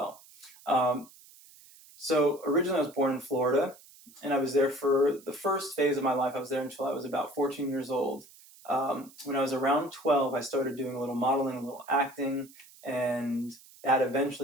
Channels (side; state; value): right; noise; hiss, 23 dB below the sound